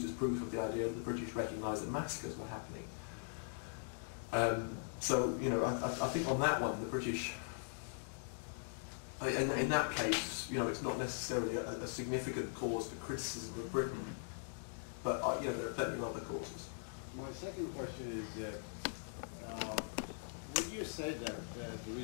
as proof of the idea that the British recognised that massacres were happening. So I think on that one, the British, in that case, it's not necessarily a significant cause for criticism of Britain, but there are plenty of other causes. My second question is. Would you say that the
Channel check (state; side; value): silent; right; digital silence